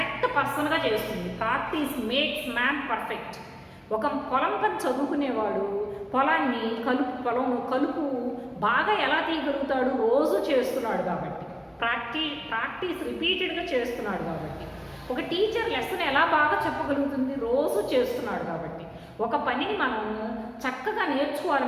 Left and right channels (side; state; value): both; identical; correlation 1.00